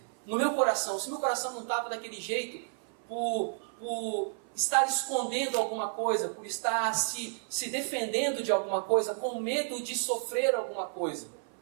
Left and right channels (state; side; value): silent; left; 57 dB below the other